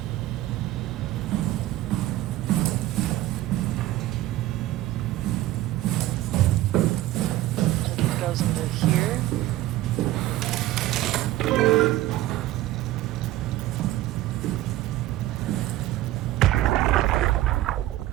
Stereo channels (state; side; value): quieter; left; 15.4 dB